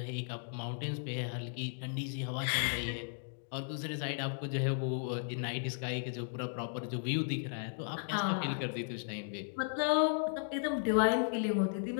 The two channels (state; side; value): silent; right; digital silence